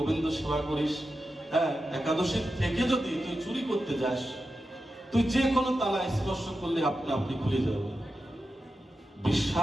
সেবা করিস, হ্যাঁ, একাদশীর থেকে যদি তুই চুরি করতে যাস, তুই যে কোনো তালা স্পর্শ করলে আপনি খুলে যাবে।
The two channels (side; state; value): both; normal; correlation 0.90